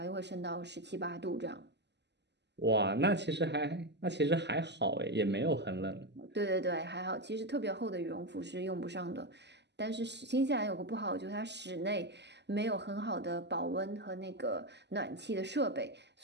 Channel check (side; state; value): left; late; 0.50 ms